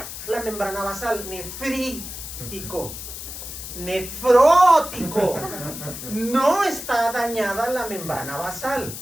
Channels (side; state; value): left; noise; hiss, 9 dB below the sound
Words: la membrana basal. Nefrítico. Nefrótico. No está dañada la membrana basal.